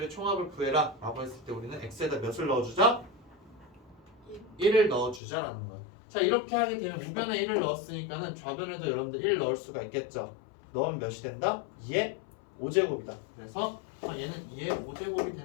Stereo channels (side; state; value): right; drops out; at 5.2 s